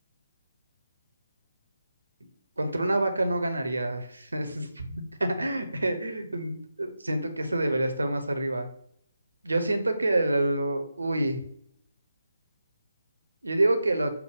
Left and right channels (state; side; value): inverted; both; correlation -0.89